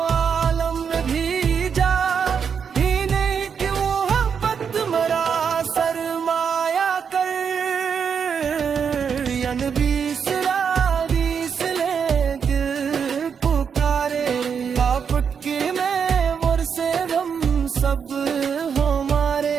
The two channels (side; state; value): left; quieter; 6.8 dB